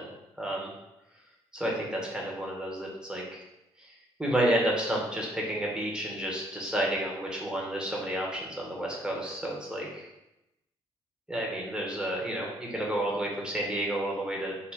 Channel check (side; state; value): both; normal; correlation 0.66